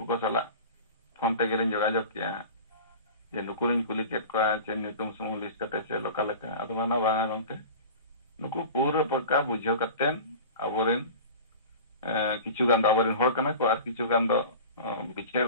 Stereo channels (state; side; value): inverted; both; correlation -0.36